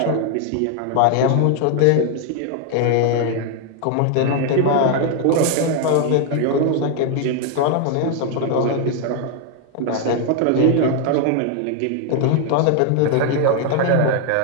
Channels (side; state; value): both; different; correlation 0.00